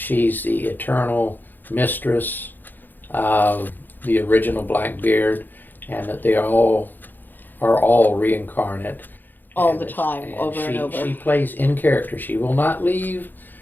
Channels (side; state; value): right; late; 0.089 ms